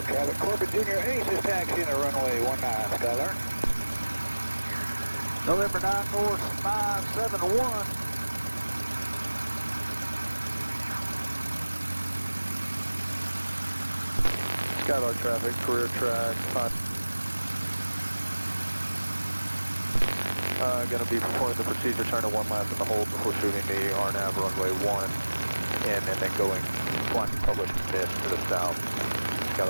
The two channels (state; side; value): inverted; both; correlation -1.00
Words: traffic. Corbin Jr Ace is taxiing at runway 19, Skylark. November 94571. Skylark traffic, career track. Going to be performing the procedure, turning one lap in the hold before shooting the RNAV runway 1, and then going flying public mist to the south.